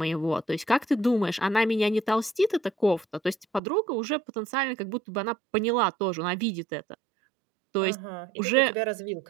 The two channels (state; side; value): drops out; left; at 3.6 s